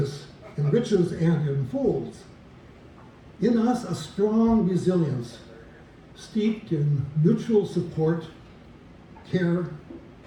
enriches and enfolds. In us a strong resilience, steeped in mutual support, care,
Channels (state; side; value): identical; both; correlation 1.00